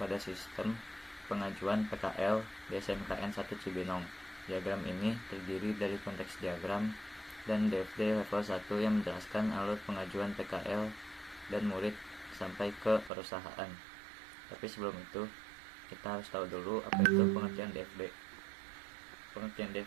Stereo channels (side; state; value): left; drops out; at 13.1 s